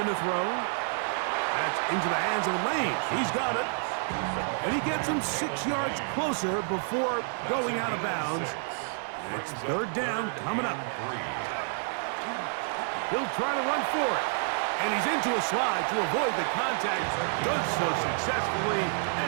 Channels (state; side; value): silent; left; 59 dB below the other